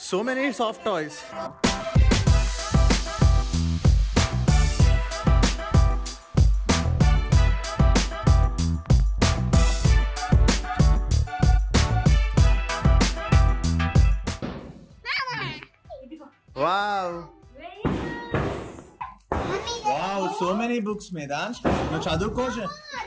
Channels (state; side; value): identical; both; correlation 1.00